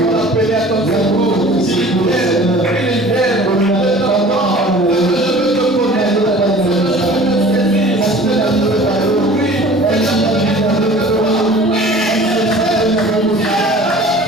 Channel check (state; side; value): normal; both; correlation 0.45